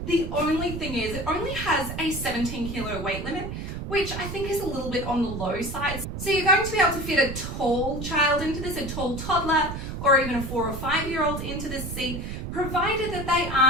The only thing is it only has a 17 kilo weight limit, which I think is a little bit on the low side. So you're going to be able to fit a tall child into this, a tall toddler, or even a 4 or 5 year old into this seat, provided that they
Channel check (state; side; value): noise; right; rumble, 6 dB below the sound